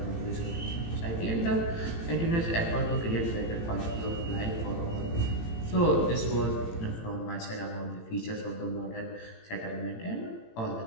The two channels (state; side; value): late; right; 18 ms